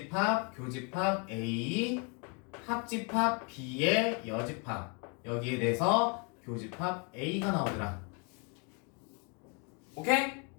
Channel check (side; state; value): right; quieter; 34.9 dB